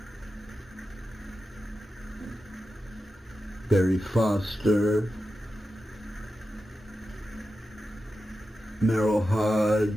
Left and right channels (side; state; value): both; normal; correlation 0.91